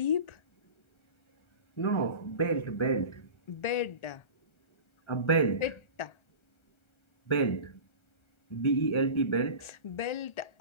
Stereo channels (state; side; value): late; right; 1.3 ms